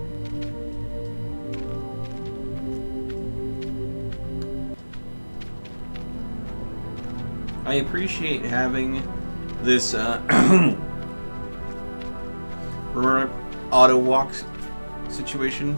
I appreciate having this auto walk situation.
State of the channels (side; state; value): both; inverted; correlation -1.00